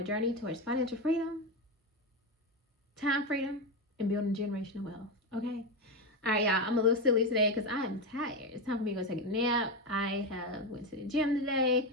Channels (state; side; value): normal; both; correlation 0.12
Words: journey towards financial freedom, time freedom, and building generational wealth. Okay. All right, y'all. I'm a little silly today because I am tired. It's time for me to go take a nap. I have went to the gym